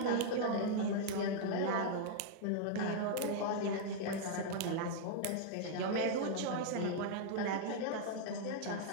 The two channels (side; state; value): both; different; correlation -0.01